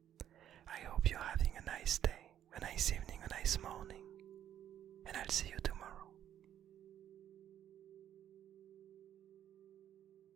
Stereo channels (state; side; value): quieter; left; 10.6 dB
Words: I hope you're having a nice day, a nice evening, a nice morning, and I'll see you tomorrow.